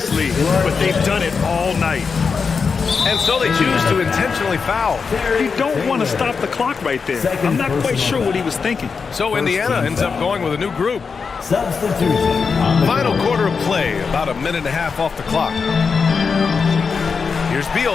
league, but they've done it all night. And so they choose to intentionally foul. You don't want to stop the clock right there. I'm not quite sure what he was thinking. So Indiana ends up going with a new group. Substitution. Final quarter of play, about a minute and a half off the clock. Here's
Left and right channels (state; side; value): quieter; right; 5.3 dB